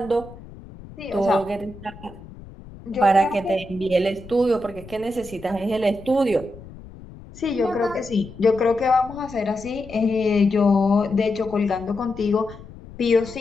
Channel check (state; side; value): noise; left; rumble, 17 dB below the sound